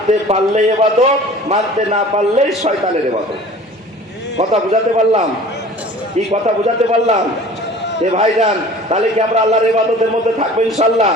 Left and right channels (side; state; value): both; normal; correlation 0.45